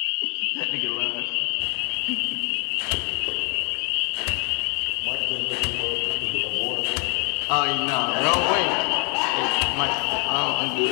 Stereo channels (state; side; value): quieter; right; 35.4 dB